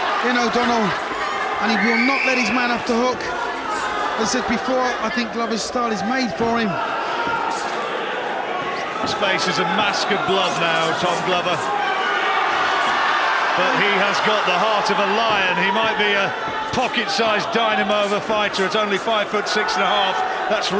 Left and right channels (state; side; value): identical; both; correlation 1.00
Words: in O'Donnell, and he will not let his man off the hook. As I said before, I think Glover's style is made for him. His face is a mask of blood now, Tom Glover. But he has got the heart of a lion. He might be a pocket-sized dynamo of a fighter at only 5'6.5". That's